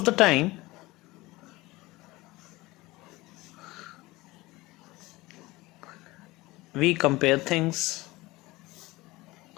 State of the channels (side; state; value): right; quieter; 20.4 dB